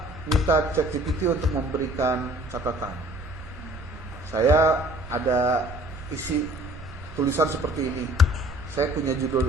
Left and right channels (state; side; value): noise; right; rumble, 17 dB below the sound